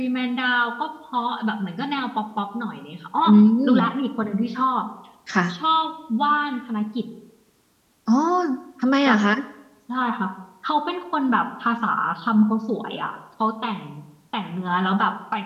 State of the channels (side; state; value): both; identical; correlation 1.00